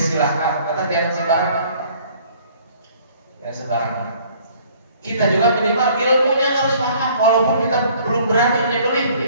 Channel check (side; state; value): both; inverted; correlation -0.56